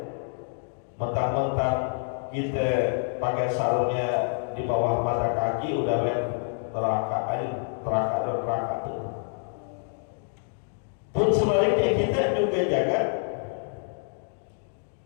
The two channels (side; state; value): right; silent; digital silence